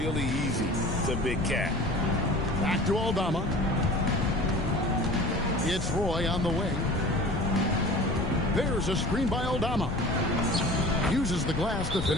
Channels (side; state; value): left; noise; rumble, 5 dB below the sound